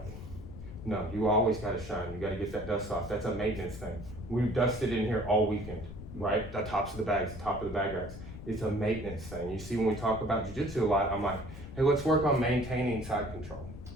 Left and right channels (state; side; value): noise; left; rumble, 12 dB below the sound